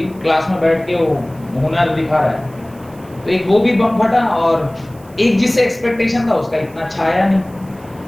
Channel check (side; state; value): right; noise; hiss, 27 dB below the sound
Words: क्लास में बैठ के वो हुनर दिखा रहा है। तो एक वो भी बम फटा, और एक जिससे एक्सपेक्टेशन था उसका इतना छाया नहीं,